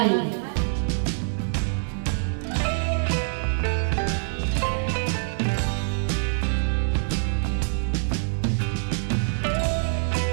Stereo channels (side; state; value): left; silent; digital silence